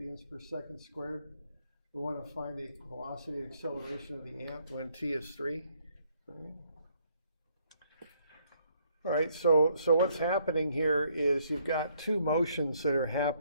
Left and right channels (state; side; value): inverted; both; correlation -0.69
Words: per second squared. We want to find the velocity and acceleration of the amp when t is 3. All right, so what's happening here is you've got two motions that are